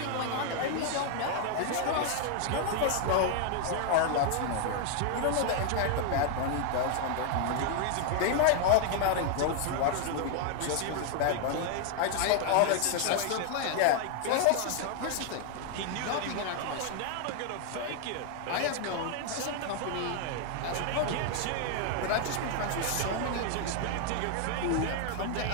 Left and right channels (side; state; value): both; different; correlation 0.00